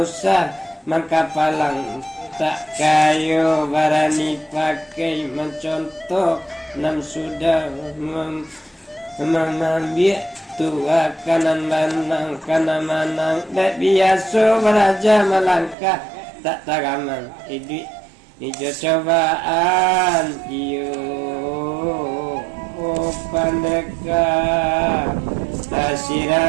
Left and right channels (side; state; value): left; drops out; at 15.8 s